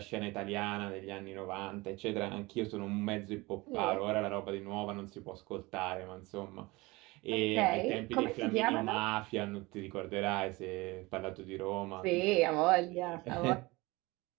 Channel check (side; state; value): left; quieter; 22.6 dB